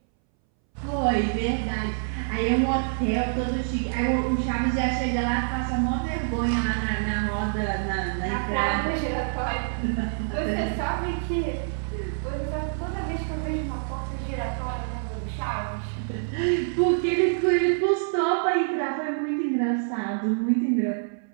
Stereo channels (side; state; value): left; silent; 61 dB below the other